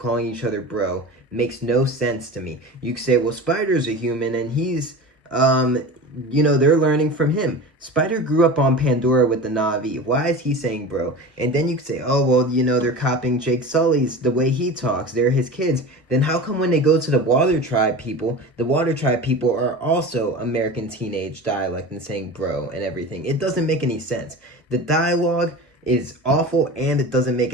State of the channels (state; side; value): normal; both; correlation 0.32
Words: each other bro makes no sense to me. You could say, well, Spider's a human and he's, they're learning from him. Spider grew up on Pandora with the Na'vi. Why is he saying bro? And then you could say, oh, well, they're copying Jake Sully's, the way he talks. They're his kids. Then how come when they go to the Water Tribe people, the Water Tribe people are also American teenage dialect and saying bro and everything? It doesn't make any sense. The dialogue is awful and it doesn't make